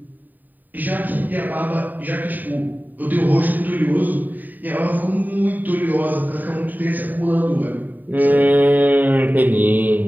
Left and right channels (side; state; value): left; late; 0.087 ms